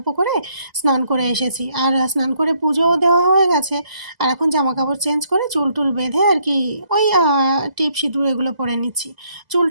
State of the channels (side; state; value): left; late; 2.0 ms